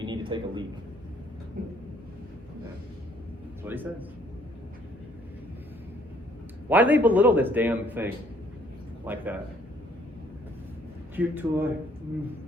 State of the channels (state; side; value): normal; both; correlation 0.63